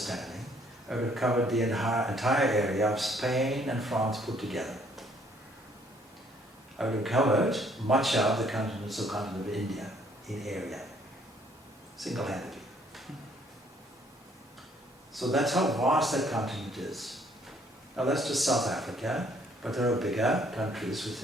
I would have covered the entire area of Spain and France put together. I would have covered much of the continental continent of India in area, single-handedly. So that's how vast that continent is. Now that's just South Africa, but there are bigger countries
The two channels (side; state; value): both; normal; correlation 0.64